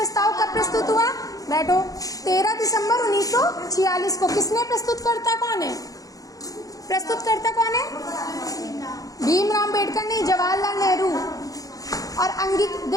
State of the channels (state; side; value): late; right; 0.17 ms